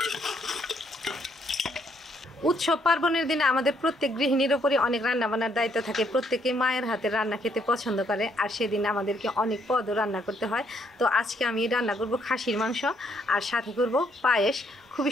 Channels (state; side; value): normal; both; correlation 0.71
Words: উৎসব পার্বণের দিনে আমাদের প্রত্যেক গৃহিণীর উপরই অনেক রান্না বান্নার দায়িত্ব থাকে। প্রত্যেকে মায়ের হাতের রান্না খেতে পছন্দ করে, আর সেদিন আমাদেরকে অনেক পদও রান্না করতে হয়। তো আজকে আমি রান্না করব খাসির মাংস আর সাথে করব পায়েস। খুবই